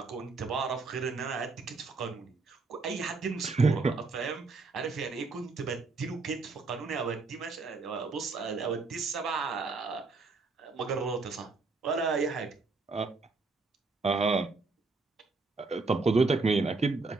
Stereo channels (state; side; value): quieter; left; 3.9 dB